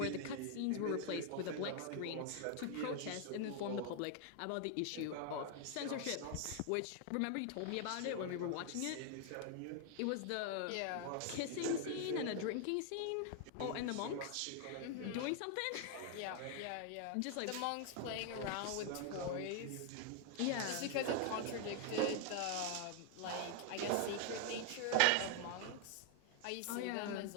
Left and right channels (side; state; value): both; different; correlation 0.00